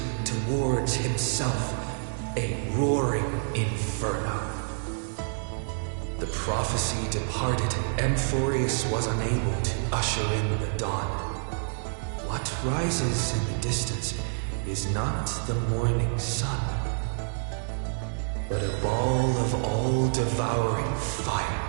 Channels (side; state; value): left; silent; digital silence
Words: towards himself, a roaring inferno. The prophecy departed, Amphorius was unable to usher in the dawn. What rises in the distance is not the morning sun, but a ball of all-devouring fire,